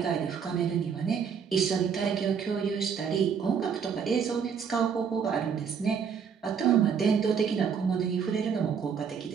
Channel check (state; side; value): quieter; left; 6.9 dB